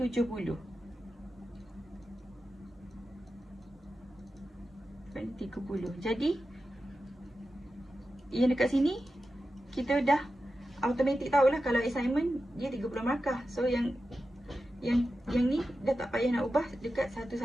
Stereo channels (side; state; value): both; normal; correlation 0.92